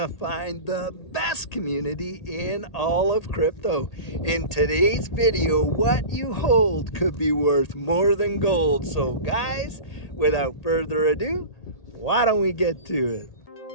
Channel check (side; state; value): right; late; 1.8 ms